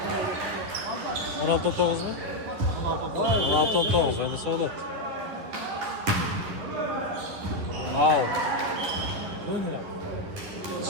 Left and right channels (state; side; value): late; left; 10 ms